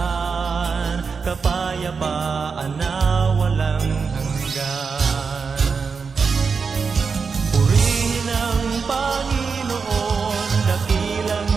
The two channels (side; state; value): left; quieter; 5.3 dB